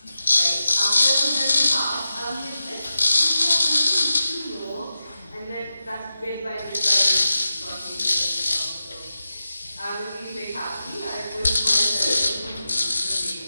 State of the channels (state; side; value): inverted; both; correlation -0.92